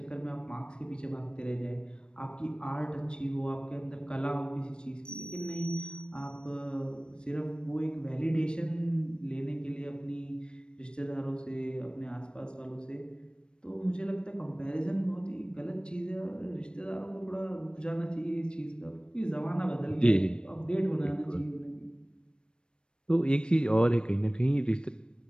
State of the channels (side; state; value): right; late; 0.054 ms